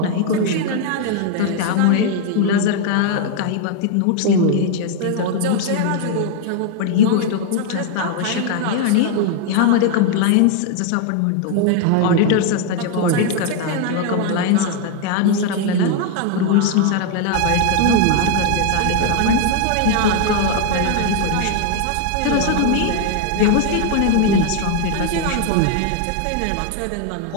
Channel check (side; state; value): both; different; correlation 0.00